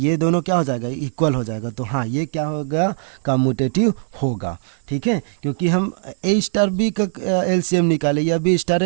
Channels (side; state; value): left; silent; 66 dB below the other